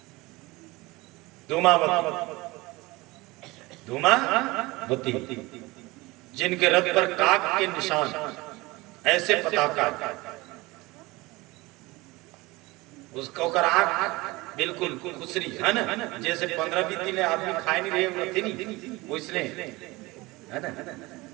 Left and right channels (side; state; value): left; quieter; 21.9 dB